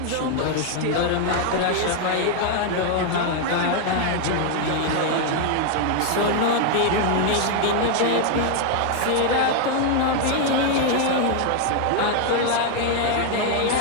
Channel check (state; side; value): different; both; correlation 0.00